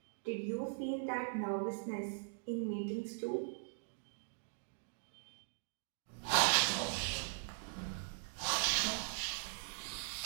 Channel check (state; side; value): silent; left; digital silence